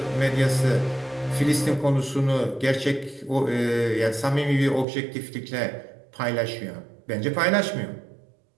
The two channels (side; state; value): left; drops out; at 4.9 s